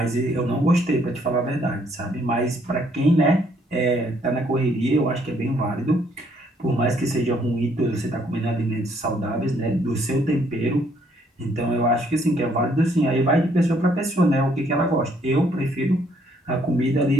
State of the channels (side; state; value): both; normal; correlation 0.67